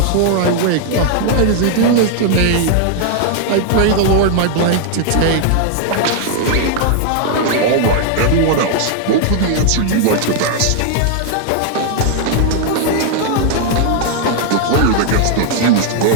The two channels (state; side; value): different; both; correlation 0.00